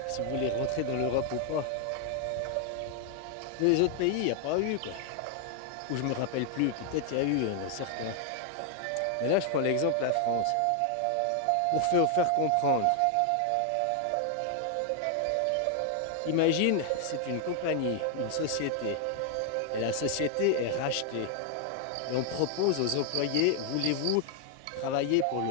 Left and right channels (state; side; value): different; both; correlation 0.00